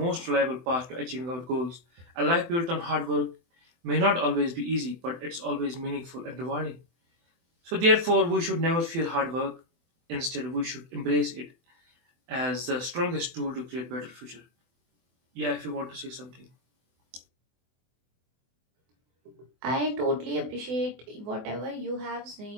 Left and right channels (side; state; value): left; late; 24 ms